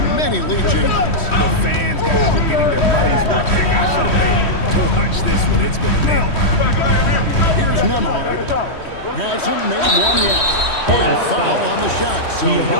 many lead changes. The fans, guys, are getting their money's worth. Heck, I should have paid to watch this one. It's been a nail. Here's Nemhard. Hasn't made one yet. And foul on the shot, so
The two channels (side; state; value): right; late; 3.1 ms